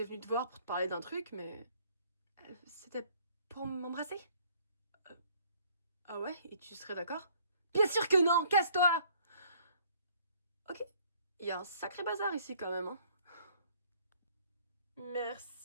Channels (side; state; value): both; inverted; correlation -0.60